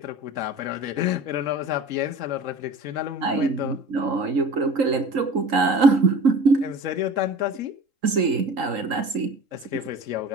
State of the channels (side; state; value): left; late; 3.8 ms